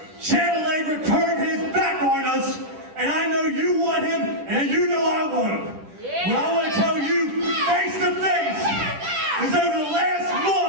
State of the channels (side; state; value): left; late; 9.9 ms